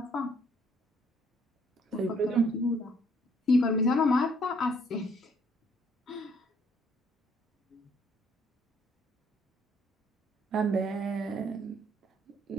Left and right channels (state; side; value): normal; both; correlation 0.64